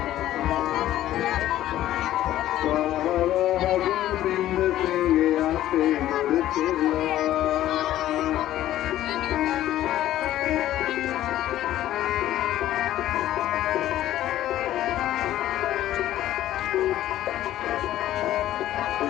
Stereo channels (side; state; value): right; quieter; 13.4 dB